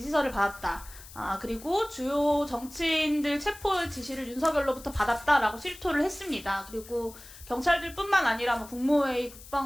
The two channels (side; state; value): left; noise; hiss, 18 dB below the sound